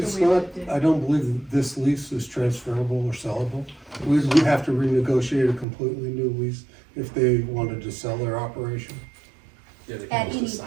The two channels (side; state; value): left; drops out; at 5.7 s